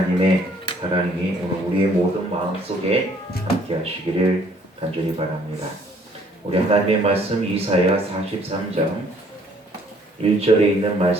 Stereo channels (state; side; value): normal; both; correlation 0.61